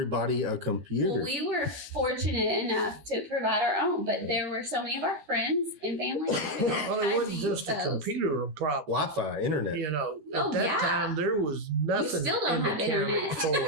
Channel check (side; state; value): left; late; 13 ms